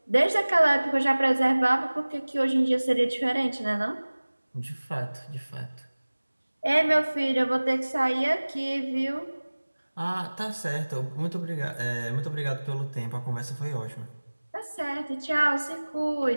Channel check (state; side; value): inverted; both; correlation -1.00